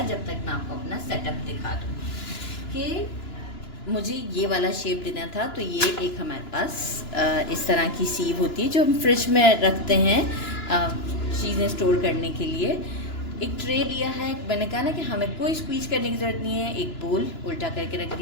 जब तक मैं आपको अपना सेटअप दिखा दूँ कि मुझे ये वाला शेप देना था। तो ये एक हमारे पास इस तरह की सीव होती है जो हम फ्रिज में रखते हैं चीज़ें स्टोर करने के लिए। एक ट्रे लिया है, मैंने कहा ना कि हमें कोई स्क्वीज करने की ज़रूरत नहीं है। एक बोल उल्टा करके रख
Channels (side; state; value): right; late; 2.9 ms